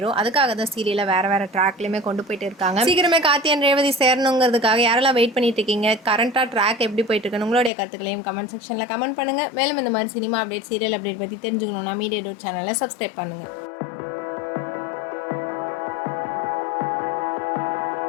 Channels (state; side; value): drops out; right; at 7.7 s